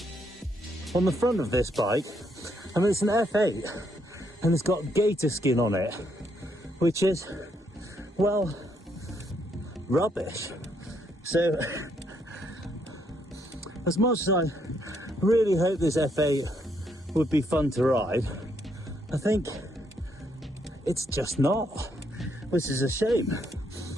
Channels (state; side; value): normal; both; correlation 0.74